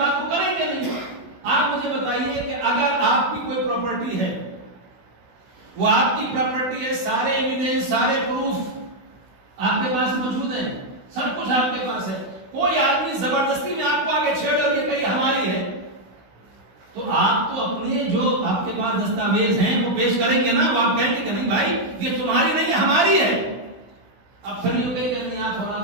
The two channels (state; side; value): late; left; 16 ms